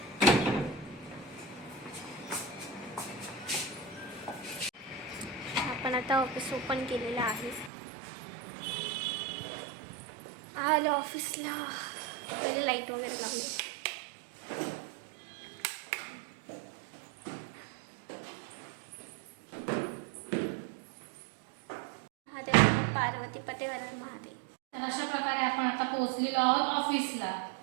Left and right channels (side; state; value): left; drops out; at 7.7 s